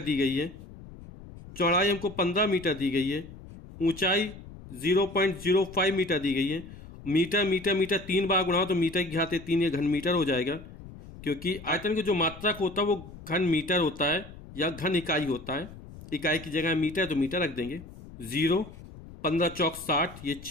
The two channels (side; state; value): left; noise; rumble, 16 dB below the sound